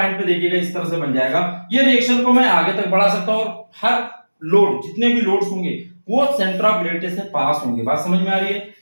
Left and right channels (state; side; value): inverted; both; correlation -1.00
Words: पे देखिएगा इस तरह से बन जाएगा। ये रिएक्शन को मैं आगे तक बढ़ा सकता हूं, और हर लोड, जितने भी लोड्स होंगे वो सेंटर ऑफ ग्रेविटी से पास होंगे। बात समझ में आ रही है?